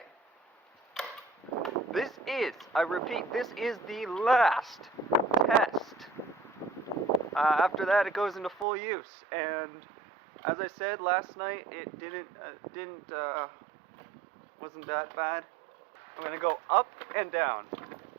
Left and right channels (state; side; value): drops out; left; at 8.7 s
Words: This is, I repeat, this is the last test. After that, it goes into full use. And as I said last night, it wasn't that bad. I'm going to go up and down.